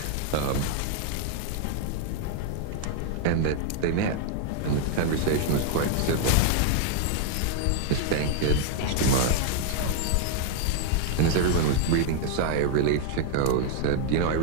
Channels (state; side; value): different; both; correlation 0.00